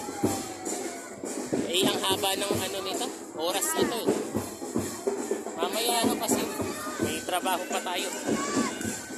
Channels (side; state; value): both; identical; correlation 1.00